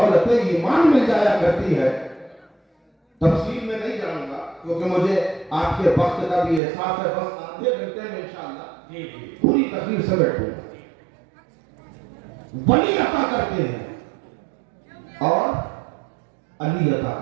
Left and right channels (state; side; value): drops out; left; at 6.6 s